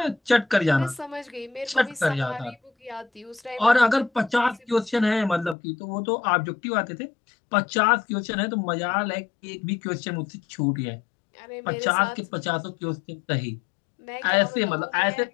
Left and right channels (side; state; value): right; drops out; at 5.6 s